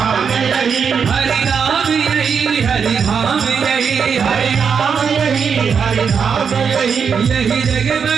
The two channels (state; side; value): quieter; left; 6.5 dB